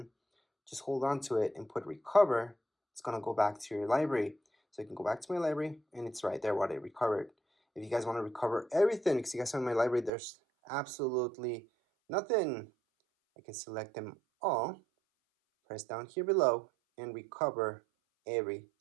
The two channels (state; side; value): drops out; left; at 10.1 s